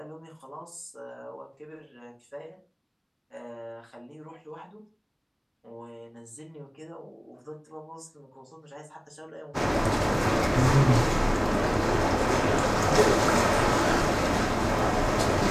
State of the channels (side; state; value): both; identical; correlation 1.00